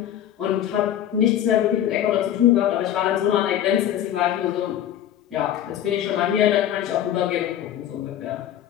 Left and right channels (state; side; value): quieter; right; 11.1 dB